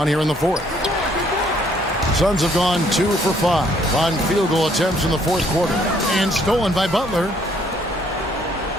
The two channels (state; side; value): normal; both; correlation 0.65